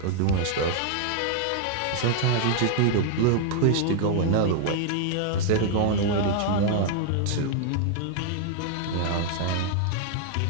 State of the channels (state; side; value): different; both; correlation 0.00